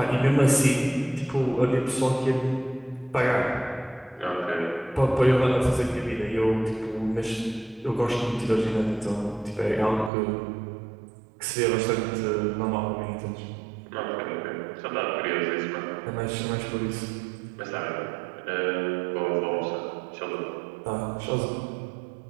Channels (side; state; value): left; drops out; at 10.1 s